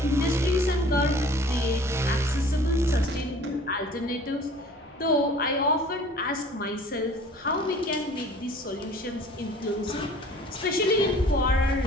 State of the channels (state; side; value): normal; both; correlation 0.49